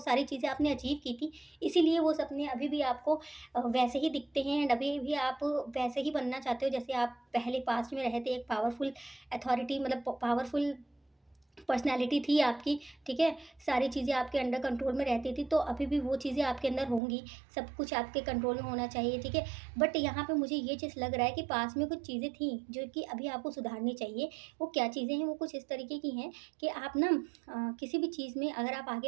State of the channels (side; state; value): left; drops out; at 17.0 s